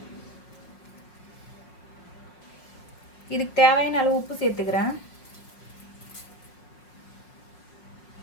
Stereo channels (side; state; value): right; late; 5.5 ms